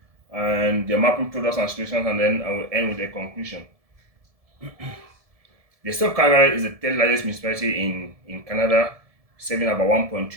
and their mapping products and solutions, and then I will end with a conclusion. The state of Calgary is the third largest municipality in Canada, serving about 1.2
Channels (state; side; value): late; left; 1.7 ms